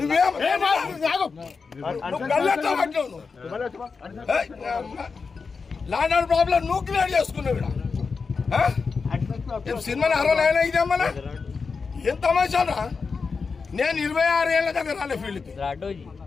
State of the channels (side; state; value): right; quieter; 4.9 dB